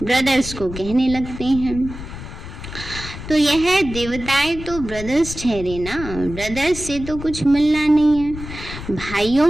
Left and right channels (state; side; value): noise; left; rumble, 11 dB below the sound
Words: ब्रदर्स को कहने लगते हैं। तो यह देवताएं तो ब्रदर्स ठहरे ना, ब्रदर्स से तो कुछ मिलना नहीं है।